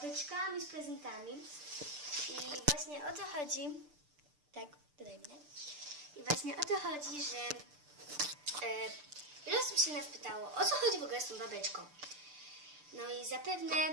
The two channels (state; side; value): late; left; 6.8 ms